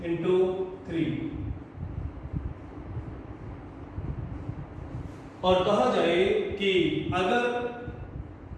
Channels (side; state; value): both; identical; correlation 1.00